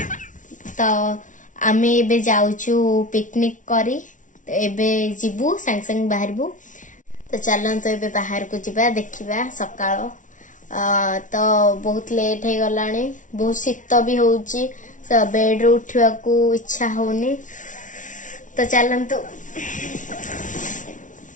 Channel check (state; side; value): late; right; 0.37 ms